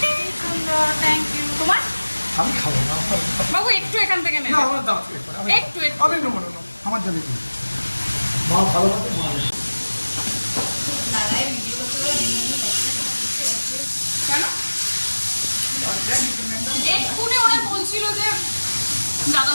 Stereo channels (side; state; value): both; inverted; correlation -1.00